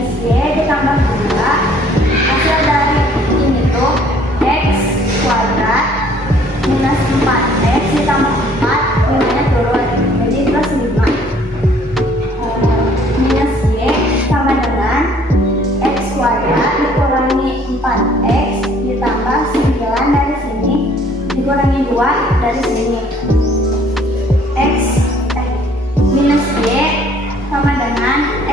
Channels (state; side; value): normal; both; correlation 0.58